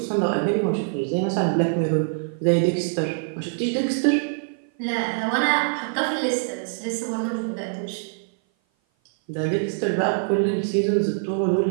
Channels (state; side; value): silent; left; 57 dB below the other